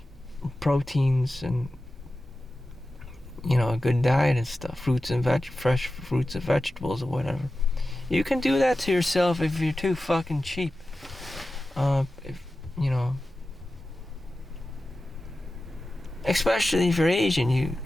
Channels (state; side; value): normal; both; correlation 0.94